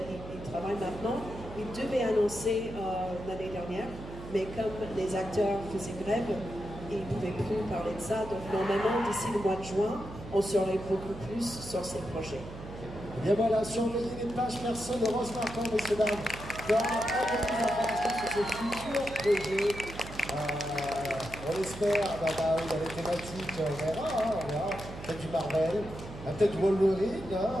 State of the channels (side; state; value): right; noise; hum, 12 dB below the sound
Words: il travaille maintenant, il devait annoncer l'année dernière, mais comme les acteurs faisaient grève, ils ne pouvaient plus parler de ça. Donc, normalement, d'ici le mois de juin, on saurait beaucoup plus sur ces projets. Et bien voilà, surveillez les pages perso de Rose Marquand, messieurs dames, dans beaucoup d'informations sur ses futurs projets. On espère, il y a les thématiques, on verra. Peut-être du Marvel, peut-être Wolverine, je